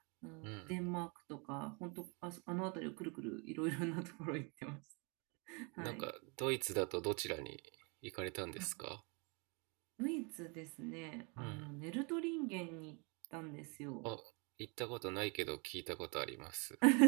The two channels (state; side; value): quieter; left; 32.1 dB